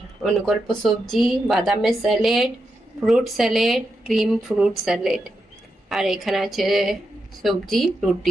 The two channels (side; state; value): both; normal; correlation 0.86